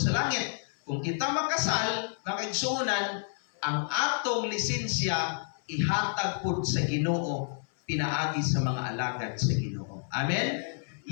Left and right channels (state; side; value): silent; right; 58 dB below the other